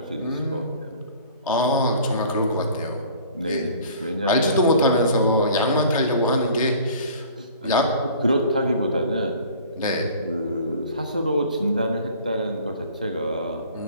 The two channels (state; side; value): inverted; both; correlation -0.48